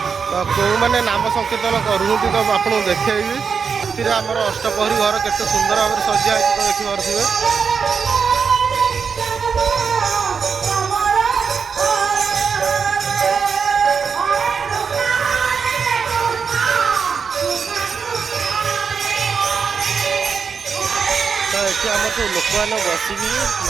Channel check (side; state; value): left; quieter; 6.0 dB